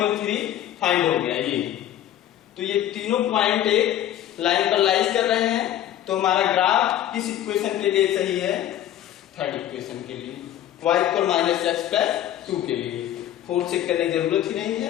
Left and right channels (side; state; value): right; quieter; 11.9 dB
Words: 3 फाइंड हो गया ये, तो ये तीनों पॉइंट एक लाइन पर लाइज कर रहे हैं, तो हमारा ग्राफ किस इक्वेशन के लिए सही है, थर्ड इक्वेशन के लिए, y इक्वल -x प्लस 2 के लिए। फोर्थ चेक करने की जरूरत ही नहीं